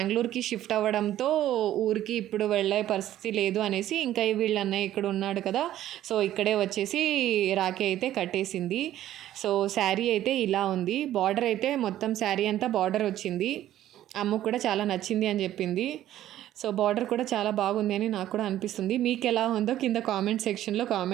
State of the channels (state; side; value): quieter; left; 12.8 dB